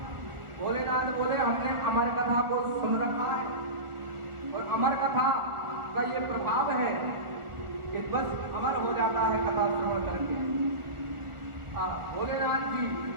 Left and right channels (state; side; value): late; left; 1.4 ms